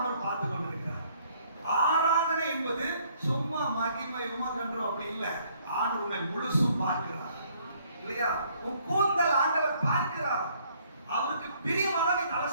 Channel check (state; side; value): inverted; both; correlation -0.64